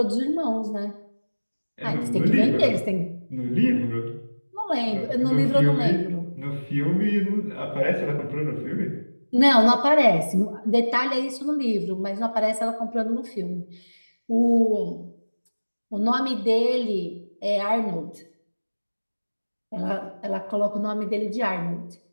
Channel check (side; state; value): both; inverted; correlation -1.00